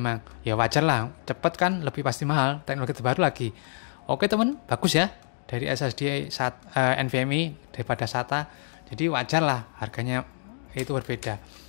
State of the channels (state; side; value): silent; right; digital silence